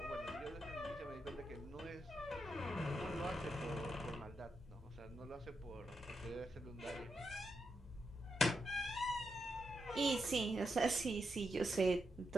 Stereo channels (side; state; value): both; normal; correlation 0.84